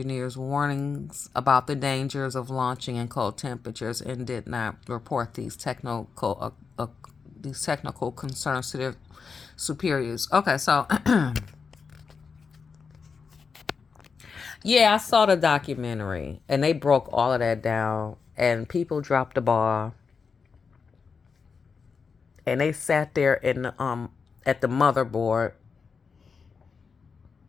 warnings about the dangers of launching in cold temperatures and did not report these technical concerns to their superiors. Okay, so yeah, I saw the documentary and they broke all of that down and people dropped the ball and they sat there in the, at the motherboard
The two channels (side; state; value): right; quieter; 5.4 dB